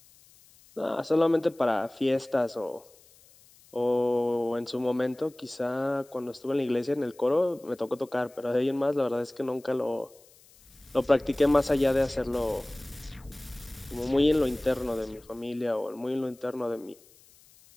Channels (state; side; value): noise; left; hiss, 27 dB below the sound